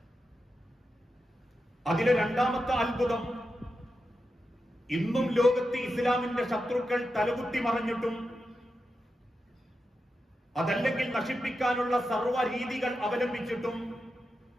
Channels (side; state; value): both; normal; correlation 0.89